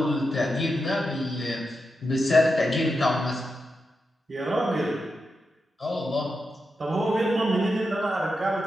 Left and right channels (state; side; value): normal; both; correlation 0.88